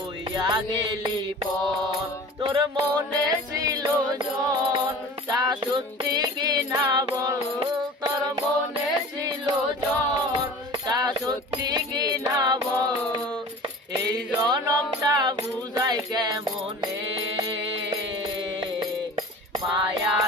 গেলি পর তোর মনে ছিল জন তা সত্যি কি না বল তোর মনে ছিল জন তা সত্যি কি না বল এই জনমটা বুঝাই কেমনে মায়া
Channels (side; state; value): both; normal; correlation 0.40